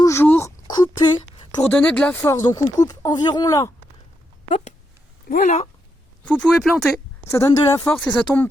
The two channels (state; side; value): normal; both; correlation 0.82